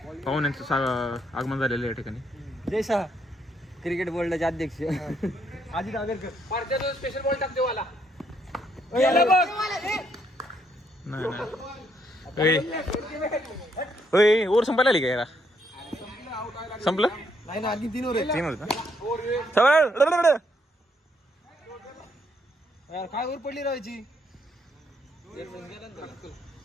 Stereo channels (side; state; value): both; normal; correlation 0.73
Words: पाहून यांचं आगमन झालेलं या ठिकाणी. जयशा क्रिकेट बोर्डाचे अध्यक्ष अजित आगरकर. स्पेशल बॉल टाकते वाला. नाही ओव्हर संपायला आली का याला? संपलं नाही ना आधी 3 ओव्हर. 3 होत यार काय ओव्हर पडली राहायची.